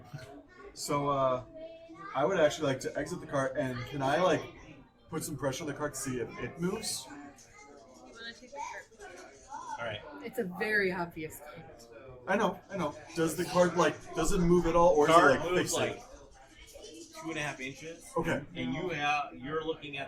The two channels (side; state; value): both; identical; correlation 1.00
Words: So, I would actually like to exit the cart, and can I like put some pressure on the cart to see if it moves? You want to take the cart? All right. It's a very obvious card. I know. Does the cart does it move at all, or Card is it like moves fixated? like 2.5 inches. Okay. And you're looking